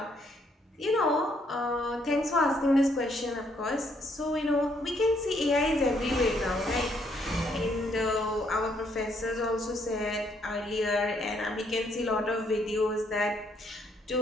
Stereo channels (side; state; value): both; normal; correlation 0.70